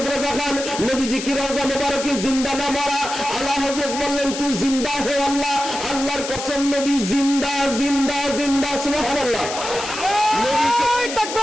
রেজা খান, নবীজি কি রওজা মুবারকে জিন্দা না মারা? আলা হযরত বললেন, তু জিন্দা হে আল্লাহ, আল্লাহর কসম নবী জিন্দা জিন্দা জিন্দা। সুবহানাল্লাহ। আল্লাহু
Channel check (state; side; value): noise; left; hiss, 7 dB below the sound